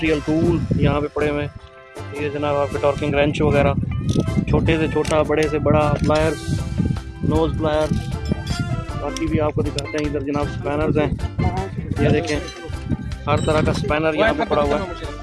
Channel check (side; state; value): both; identical; correlation 1.00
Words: टूल यहाँ पे पड़े हुए हैं। ये जनाब आपके टॉर्किंग रेंच वगैरह, छोटे से छोटा, बड़े से बड़ा, प्लायर्स, नोज प्लायर्स, बाकी भी आपको दिखाते हैं। इधर जनाब स्पैनर्स हैं। ये देखें हर तरह का स्पैनर यहाँ पे पड़ा हुआ है,